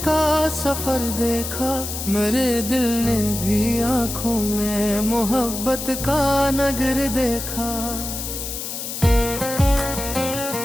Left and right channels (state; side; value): noise; left; hiss, 6 dB below the sound